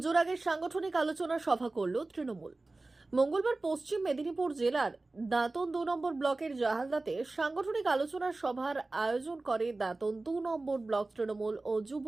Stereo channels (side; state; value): left; quieter; 3.2 dB